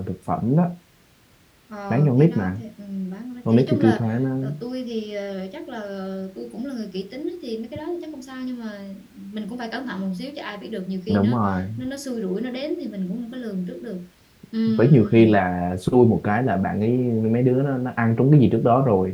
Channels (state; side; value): identical; both; correlation 1.00